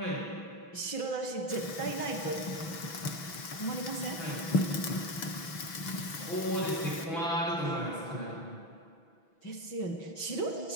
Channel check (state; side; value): late; right; 6.1 ms